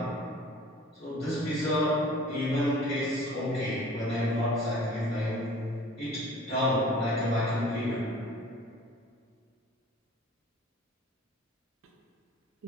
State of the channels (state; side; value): normal; both; correlation 0.47